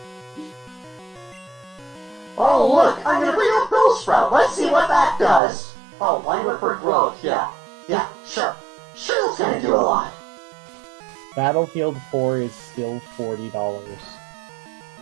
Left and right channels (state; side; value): drops out; left; at 5.4 s